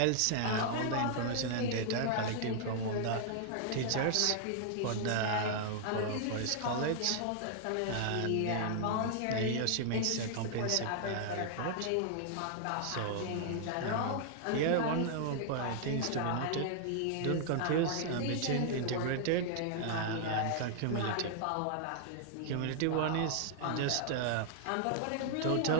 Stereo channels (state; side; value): different; both; correlation -0.01